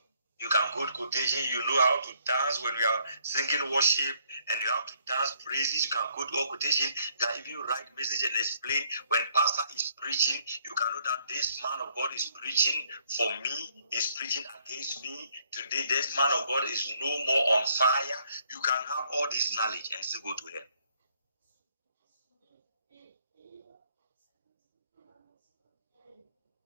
you can quote quotation, you know how to dance when we are singing worship, and you have to dance praises, you can quote all quotation, you can even write message and explain. When pastor is preaching, you can know that this man of God is preaching for me, is preaching against me. Today, this man of God is no more on fire. You can have all this knowledge and still go to hell.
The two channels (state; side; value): inverted; both; correlation -0.68